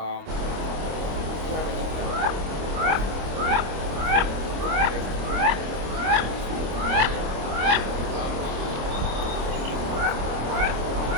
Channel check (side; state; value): left; late; 26 ms